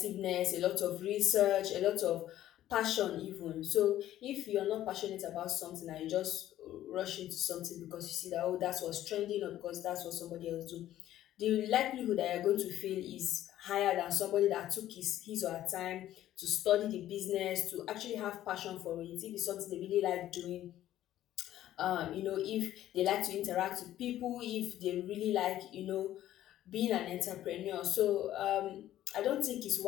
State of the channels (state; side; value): quieter; right; 13.0 dB